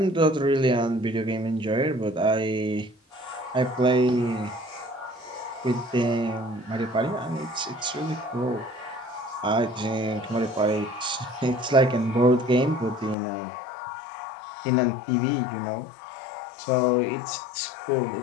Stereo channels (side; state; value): right; drops out; at 13.2 s